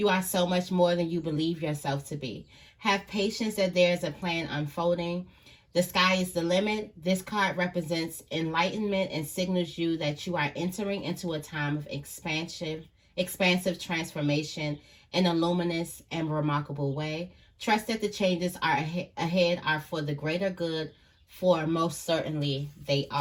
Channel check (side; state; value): both; identical; correlation 1.00